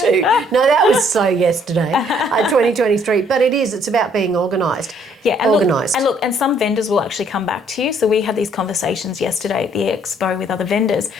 No, that was so yesterday. 2023. But it's about being organised. Yeah, and organised. And some vendors will actually come back to you. So we had these conversations yesterday at the expo with other vendors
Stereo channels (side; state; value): both; normal; correlation 0.64